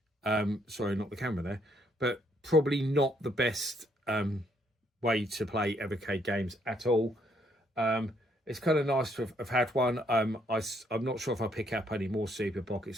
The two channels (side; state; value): both; normal; correlation 0.70